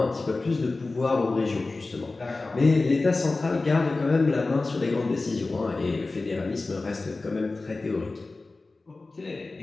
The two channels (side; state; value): right; quieter; 3.4 dB